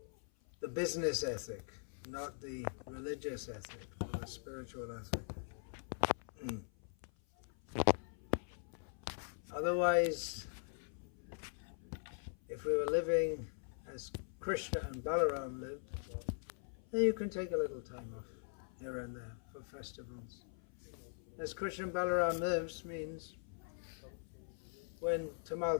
the business ethic, not the religious ethic or the spiritual ethic. Otherwise, if we were living as Krishna and Balarama lived, then you can take a little time off here and there for festivals. As Krishna and Balarama lives means when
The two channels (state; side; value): silent; right; 50 dB below the other